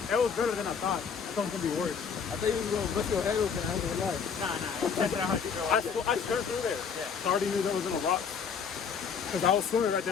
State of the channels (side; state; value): right; quieter; 6.4 dB